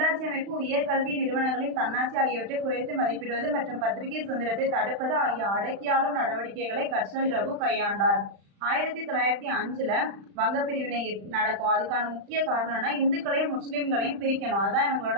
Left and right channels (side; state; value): left; late; 35 ms